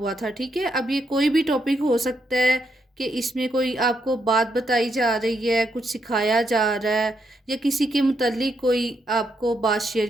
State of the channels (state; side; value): normal; both; correlation 0.79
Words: था। ठीक है, अब ये कोई भी टॉपिक हो सकता है कि इसमें कोई आपको बात बताई जा रही है, कुछ सिखाया जा रहा है, या किसी के मुतल्लिक कोई आपको बात शेयर